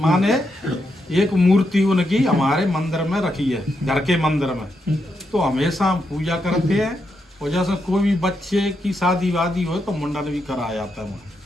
एक मूर्ति उनकी हमारे मंदिर में रखी है, घर के मंदिर में। तो हमेशा हम पूजा करते हैं, और जैसे कोई भी बच्चे की शादी वादी हो तो मुंडन भी कराया जाता है।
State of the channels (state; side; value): normal; both; correlation 0.83